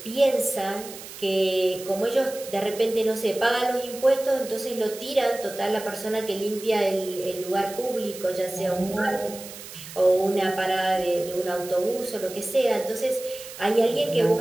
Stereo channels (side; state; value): right; noise; hiss, 14 dB below the sound